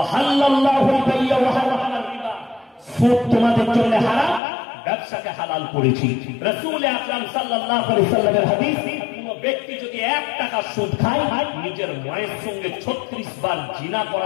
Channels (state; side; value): drops out; right; at 4.4 s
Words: বাইয়া ওয়া হারামাল রিবা, সুদ তোমাদের জন্য হারাম, ব্যবসাকে হালাল করেছি। রাসূল আকরাম সাল্লাল্লাহু আলাইহি সাল্লামের হাদিস, কোন ব্যক্তি যদি 1 টাকা সুদ খায়, নিজের মায়ের সঙ্গে 36 বার জিনা